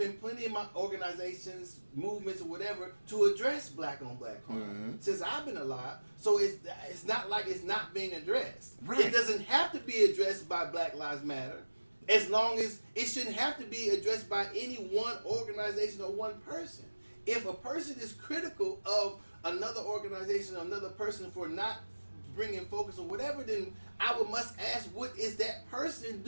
plenty of my organizations, movements, or whatever to address black on black crime mm-hmm. since I've been alive. So it's not like it's not being addressed. Right. It doesn't have to be addressed by Black Lives Matter, as long as it shouldn't have to be addressed by any one organization or one person. If a person is critical of another organization or another person for not bringing focus or whatever, then I must ask, what is that person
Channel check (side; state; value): both; inverted; correlation -1.00